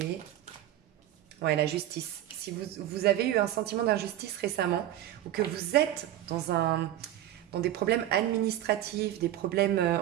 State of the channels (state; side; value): quieter; left; 12.9 dB